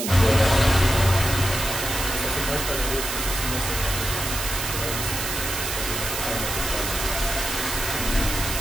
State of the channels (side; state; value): right; noise; hiss, 3 dB below the sound